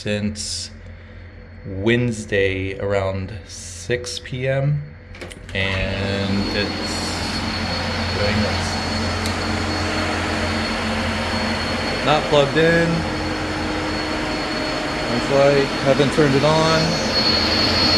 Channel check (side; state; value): both; identical; correlation 1.00